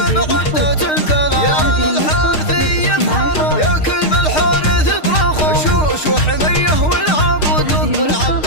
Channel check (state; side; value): late; right; 6.5 ms